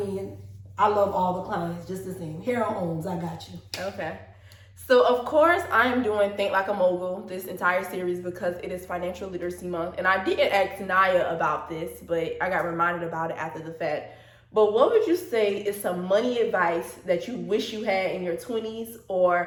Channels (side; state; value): both; identical; correlation 1.00